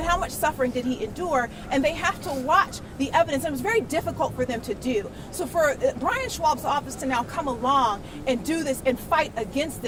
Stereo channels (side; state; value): both; identical; correlation 1.00